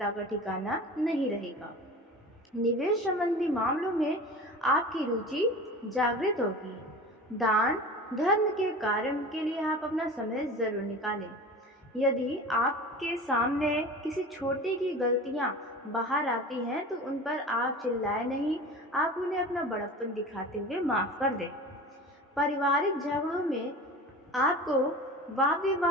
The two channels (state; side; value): normal; both; correlation 0.35